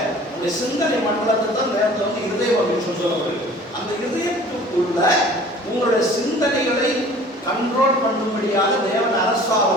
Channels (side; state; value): both; normal; correlation 0.47